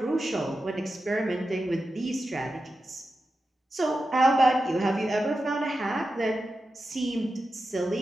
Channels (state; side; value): normal; both; correlation 0.91